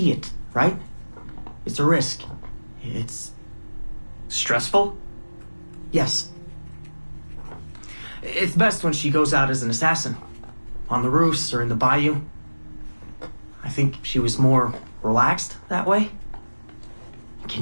it, right? It's a risk. It's... Stressful? Yes. It's best when she goes out as an assassin. On the roofs or in the bayou. I think she was more relaxed that way.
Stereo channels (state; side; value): inverted; both; correlation -1.00